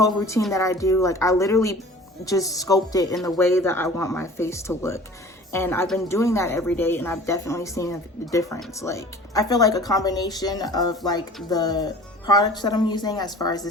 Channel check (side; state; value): both; normal; correlation 0.44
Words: routine that I do. Like I literally just sculpt it in the way that I want my face to look. And I've been doing that every day, and I've definitely seen a difference. Like I feel like a combination of like the products that I'm using as far as the